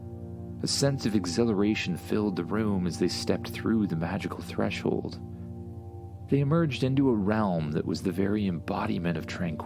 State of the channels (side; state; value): both; identical; correlation 1.00